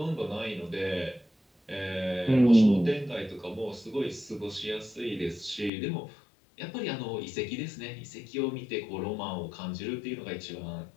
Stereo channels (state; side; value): drops out; right; at 5.7 s